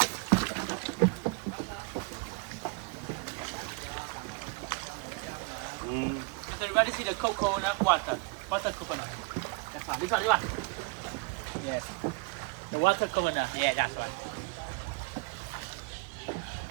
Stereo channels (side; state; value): left; quieter; 29.7 dB